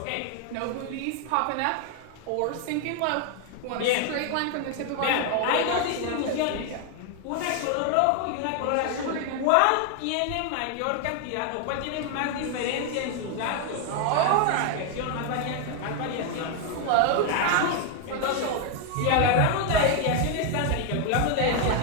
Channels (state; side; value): different; both; correlation 0.01